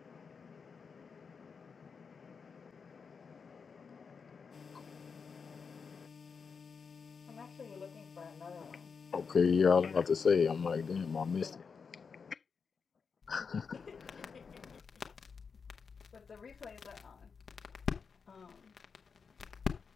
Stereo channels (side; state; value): right; quieter; 5.6 dB